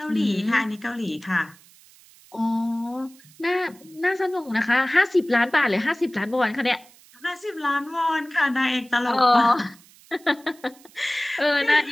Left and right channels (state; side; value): noise; right; hiss, 26 dB below the sound